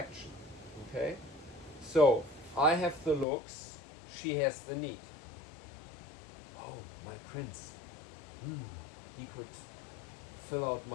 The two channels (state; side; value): drops out; right; at 3.2 s